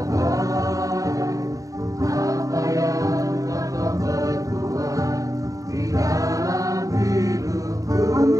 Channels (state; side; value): late; left; 0.16 ms